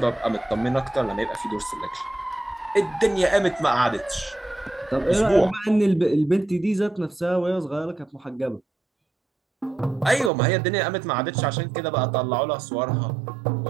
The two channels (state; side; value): drops out; left; at 10.3 s